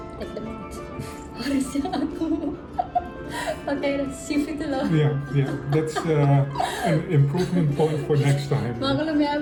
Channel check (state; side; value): identical; both; correlation 1.00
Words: take them out. Harusnya aku pakai sieve itu loh. Yeah, that's an improvement point for next time. Maklum ya,